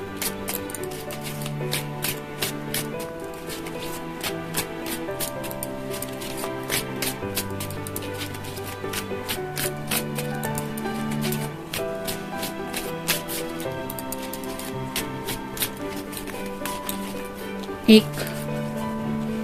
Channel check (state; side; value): identical; both; correlation 1.00